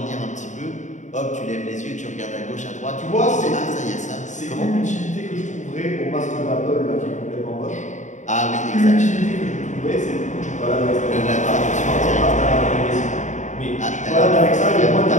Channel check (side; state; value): right; late; 0.35 ms